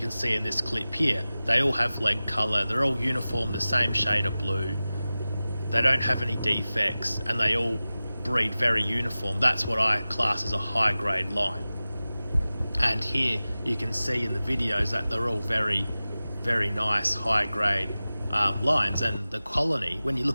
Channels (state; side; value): inverted; both; correlation -0.96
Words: see in this clip here, they all have leg colour, they're all uniform, the same shade of blue. They don't have any defects, and they all breed very uniform. That's what I class as a high grade line. And here you can see in the videos that they're all very, very nice high grade lines. And the colony, when you